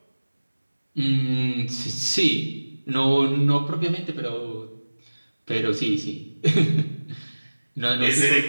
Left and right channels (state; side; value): inverted; both; correlation -1.00